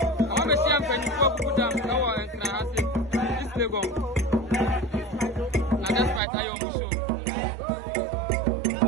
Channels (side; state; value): left; drops out; at 6.2 s